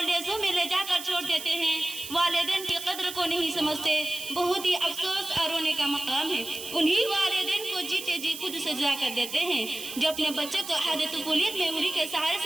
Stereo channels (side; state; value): right; noise; hiss, 11 dB below the sound